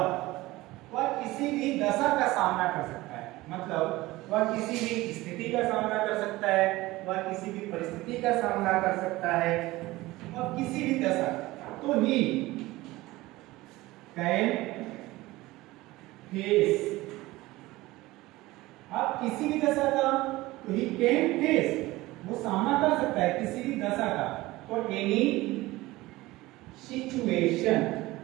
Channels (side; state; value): left; quieter; 19.0 dB